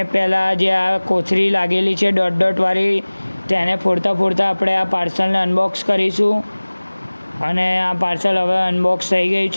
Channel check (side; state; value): both; inverted; correlation -1.00